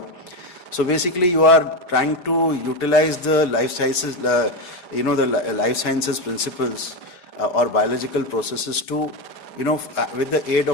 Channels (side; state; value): right; late; 5.0 ms